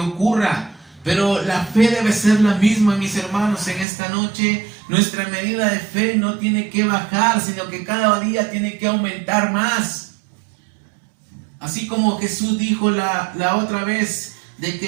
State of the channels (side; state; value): left; drops out; at 3.9 s